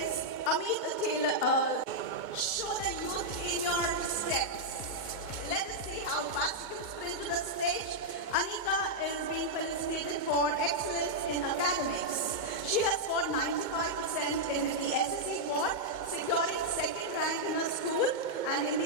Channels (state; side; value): late; left; 2.2 ms